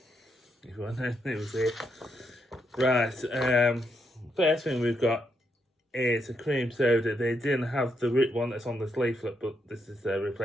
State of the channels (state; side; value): normal; both; correlation 0.79